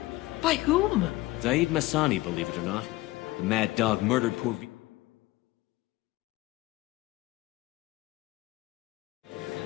By whom? Zaid Masani, believe it or not. The mad dog murdered poor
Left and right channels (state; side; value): quieter; right; 19.2 dB